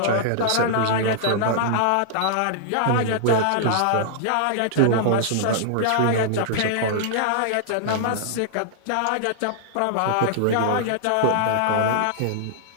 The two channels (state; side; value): different; both; correlation -0.01